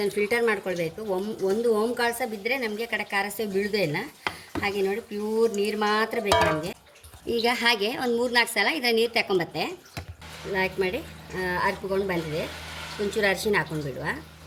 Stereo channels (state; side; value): identical; both; correlation 1.00